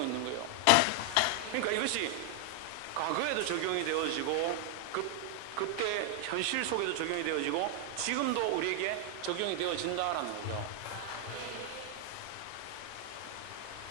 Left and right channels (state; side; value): different; both; correlation 0.00